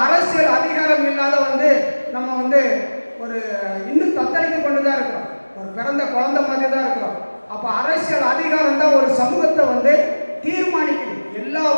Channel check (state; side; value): inverted; both; correlation -1.00